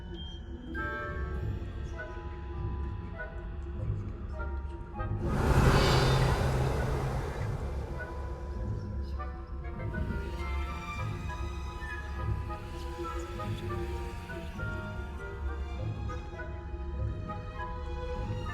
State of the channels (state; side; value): identical; both; correlation 1.00